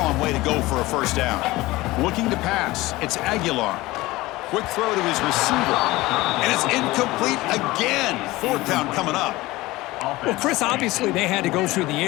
way to go for a first down. Looking to pass. It's Aguilar. Quick throw to his receiver. And it's incomplete again. Fourth down coming up. Well, Chris, obviously they had to go through the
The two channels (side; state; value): right; quieter; 19.4 dB